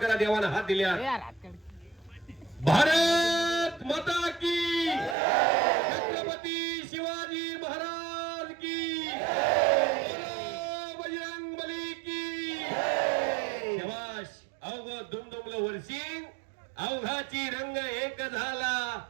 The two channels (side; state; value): left; drops out; at 5.2 s